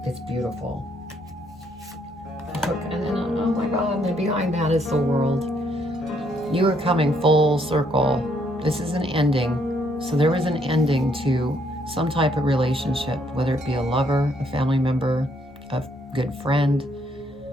it's beautiful. And then, oh my God, and then behind that is the World. You are coming full circle. This is an ending. So there was an ending to some type of relationship, whether it be a lover, a family member, a good friend.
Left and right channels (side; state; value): both; normal; correlation 0.70